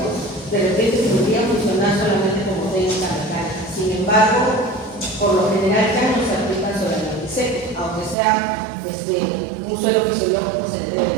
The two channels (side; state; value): left; drops out; at 8.2 s